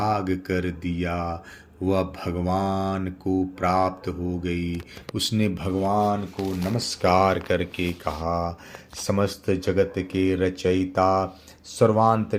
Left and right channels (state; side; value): identical; both; correlation 1.00